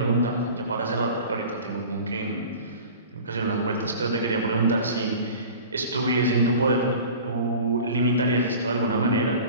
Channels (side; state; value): both; inverted; correlation -0.40